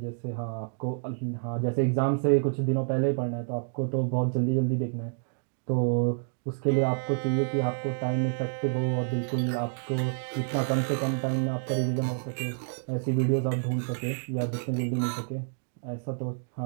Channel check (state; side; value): silent; left; digital silence